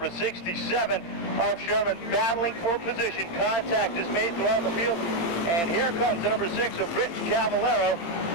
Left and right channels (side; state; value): right; late; 17 ms